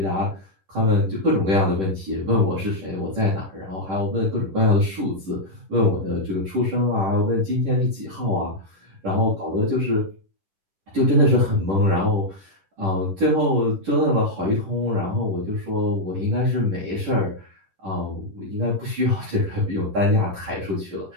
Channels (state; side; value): late; left; 10 ms